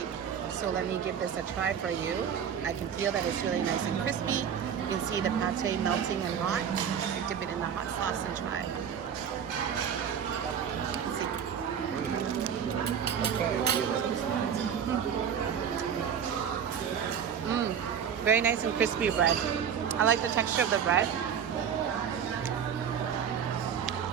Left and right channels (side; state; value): left; quieter; 8.0 dB